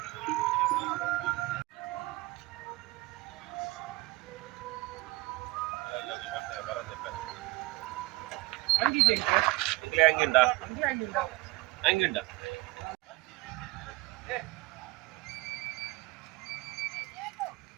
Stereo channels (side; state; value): left; quieter; 21.1 dB